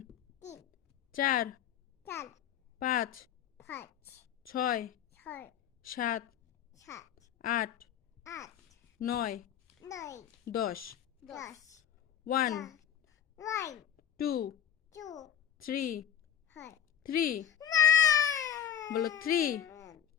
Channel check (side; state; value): right; quieter; 9.5 dB